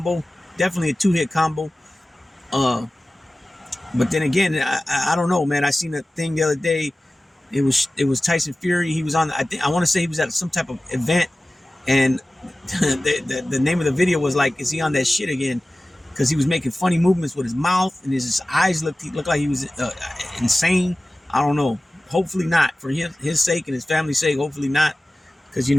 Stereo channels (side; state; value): both; normal; correlation 0.96